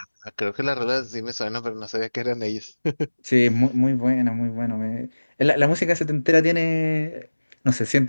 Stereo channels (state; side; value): inverted; both; correlation -1.00